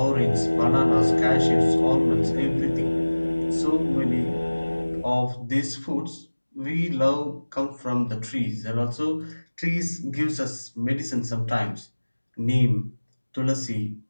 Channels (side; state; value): both; inverted; correlation -1.00